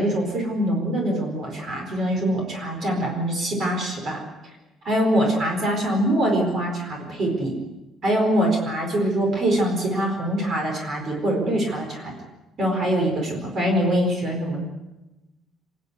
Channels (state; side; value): normal; both; correlation 0.63